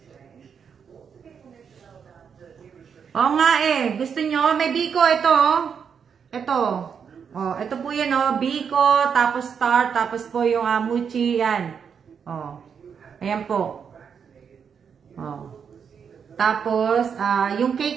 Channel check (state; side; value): quieter; left; 6.9 dB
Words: Oo nga gusto nyo, may biko ito Ito. Ito po yan biko, tapos star, tapos po yung mochi, yan. Ayan po. Tapos, yung